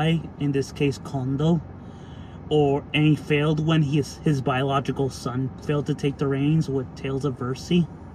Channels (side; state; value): both; identical; correlation 1.00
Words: in this case Kondo. And he failed when his biological son failed to take the reins with Tales of Versi.